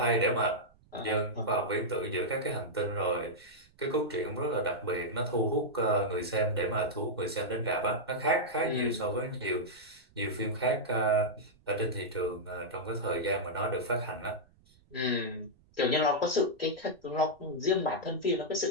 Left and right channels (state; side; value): noise; right; rumble, 30 dB below the sound